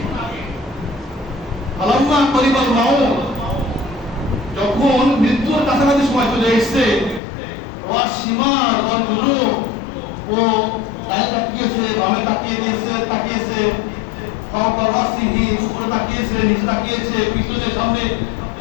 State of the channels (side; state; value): right; drops out; at 7.2 s